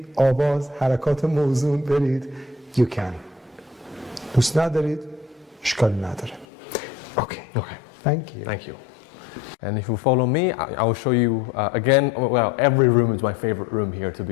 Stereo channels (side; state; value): right; drops out; at 6.5 s